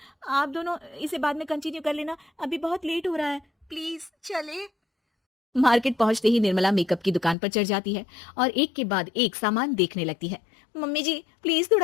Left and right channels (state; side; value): drops out; right; at 7.4 s